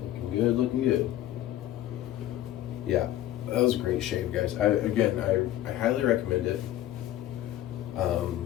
good, looking good. Yeah, that was a great shave, guys. I highly recommend it.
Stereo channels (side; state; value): right; quieter; 13.3 dB